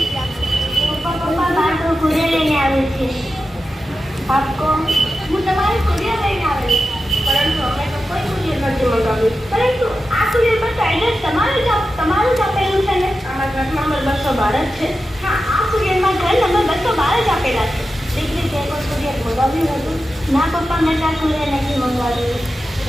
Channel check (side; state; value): both; normal; correlation 0.91